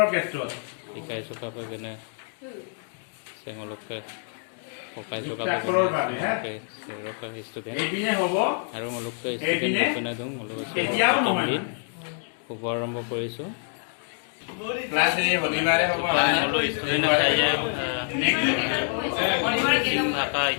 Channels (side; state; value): right; silent; 56 dB below the other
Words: ক্ষেত্ৰত শিকাইছো কাপে কেনে চেঙলকে পকাইছো কাপে যুক্তাক্ষৰৰ বাবে সেৰকা ষ্টুডেন্ট এইপিনে হ'ব আৰু অলপকে ষ্টুডেন্ট বনাই দিওঁ অলপ এতিয়াও প্ৰথম নহয় দিন শুভ আৰম্ভ কৰিছো ক্লাছ এই শনিবাৰে হ'ব সকলো ষ্টুডেন্ট আছে মিচিং ভাষা